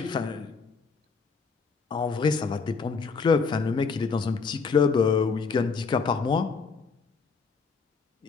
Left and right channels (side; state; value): right; quieter; 5.0 dB